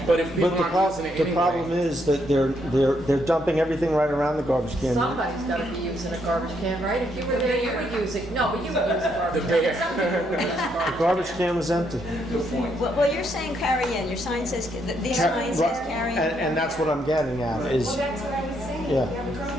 But if people But the aren't using it problem anyway, is that they're dumping everything right around the garbage can. Somebody's gotta be using a garbage can, right? If you were there, you would use it. No, but you would use a garbage The can. bear. Some people would use a garbage The garbage can was empty. Well, you're saying carry in, your sign says, this sign says carry in. And that's what I'm getting at, is, Well, that's what I was saying. Yeah. You have a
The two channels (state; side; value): normal; both; correlation 0.75